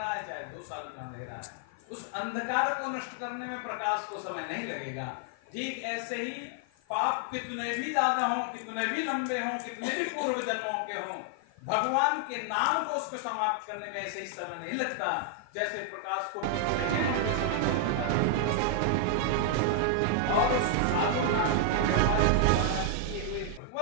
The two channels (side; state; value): both; different; correlation 0.00